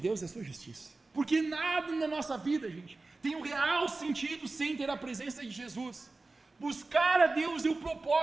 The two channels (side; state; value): left; quieter; 3.4 dB